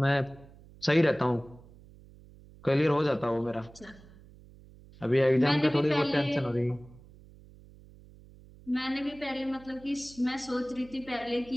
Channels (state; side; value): noise; right; hum, 22 dB below the sound